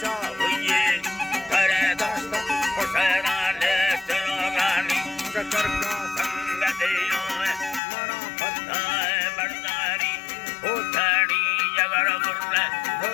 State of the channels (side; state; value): right; drops out; at 7.8 s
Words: हुए करे दस्त हुसैना ले तिरोगानी शकर का संग दियो मना फताए बरदारी उठानी जगर मुर्रे